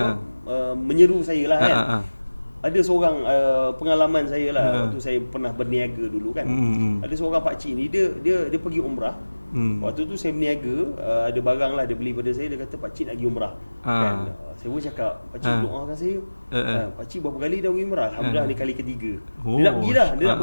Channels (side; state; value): both; inverted; correlation -1.00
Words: menyeru saya lah kan. Ada seorang pengalaman saya lah waktu saya pernah berniaga dulu kan. Ada seorang pakcik ni dia pergi umrah. Waktu tu saya berniaga, ada barang lah dia beli pada saya, dia kata pakcik nak pergi umrah. Kan. Saya pun cakap, pakcik doakan saya. Pakcik berapa kali dah pergi umrah? Alhamdulillah ni kali ketiga. Dia nak pergi lah, dia nak